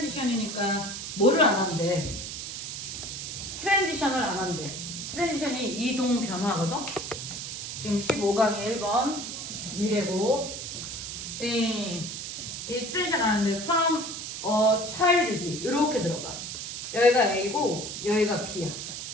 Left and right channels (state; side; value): noise; right; hiss, 7 dB below the sound